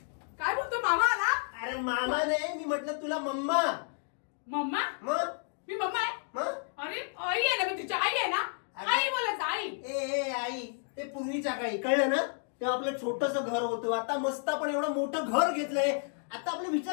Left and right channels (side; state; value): right; silent; 57 dB below the other